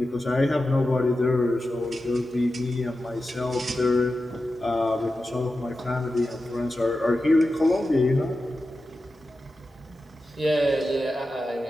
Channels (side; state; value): both; normal; correlation 0.92